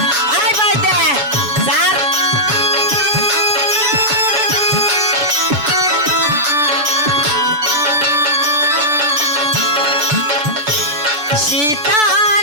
আয় ভাই দে স্যার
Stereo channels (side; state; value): left; late; 6.9 ms